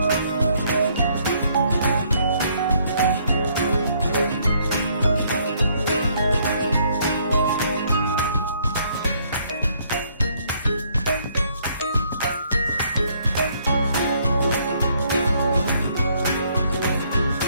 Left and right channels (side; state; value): both; inverted; correlation -0.67